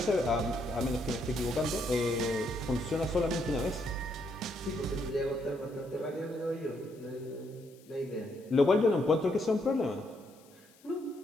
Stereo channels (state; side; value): noise; left; hiss, 28 dB below the sound